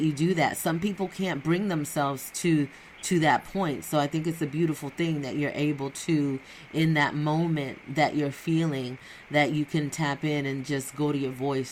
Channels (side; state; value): both; identical; correlation 1.00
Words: do that. Some people can't bring themselves to that point. So I think it's a beautiful thing that you're able to, in that moment that you're feeling, that you can tap in and just go to your